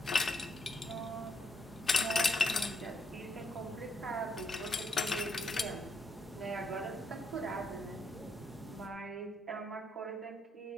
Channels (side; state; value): both; normal; correlation 0.75